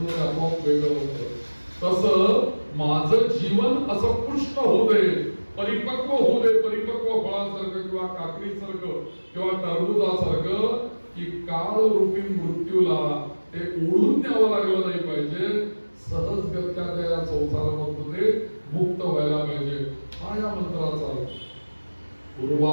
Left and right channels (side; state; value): both; inverted; correlation -1.00